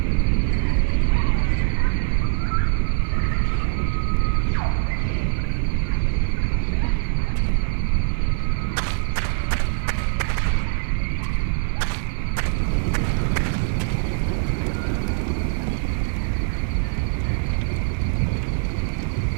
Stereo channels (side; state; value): left; silent; digital silence